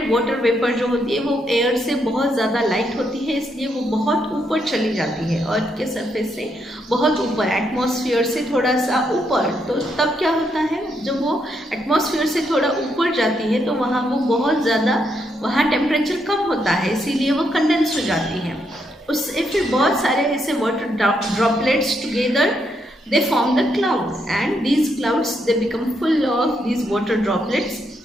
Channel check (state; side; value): normal; both; correlation 0.78